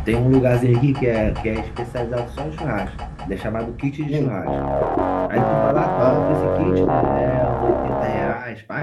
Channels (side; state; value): both; identical; correlation 1.00